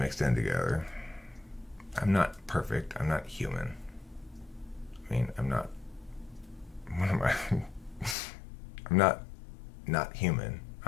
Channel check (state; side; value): drops out; right; at 8.2 s